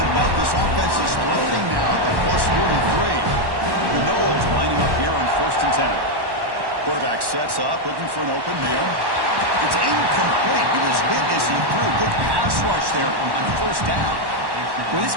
but this offense is floating now at the plus 43. The Knowles lining up here on 1st and 10. Quarterback sets up, looking for an open man. It's incomplete. He was hit as he threw. Good pass rush there on 1st down. When this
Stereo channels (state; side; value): late; left; 1.1 ms